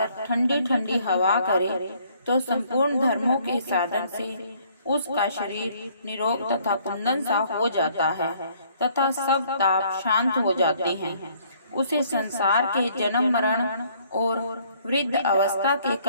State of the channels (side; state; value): both; inverted; correlation -0.62